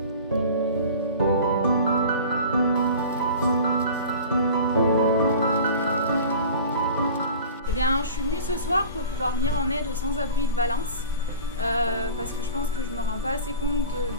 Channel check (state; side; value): inverted; both; correlation -0.39